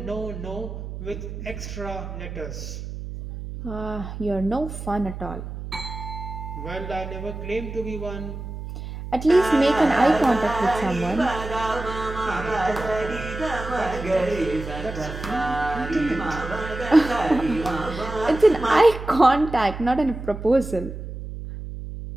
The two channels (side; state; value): right; noise; hum, 9 dB below the sound